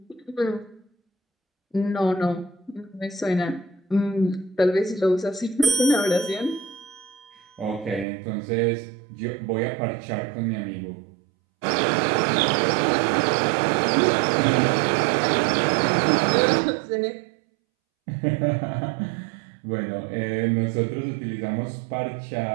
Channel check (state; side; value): drops out; left; at 8.1 s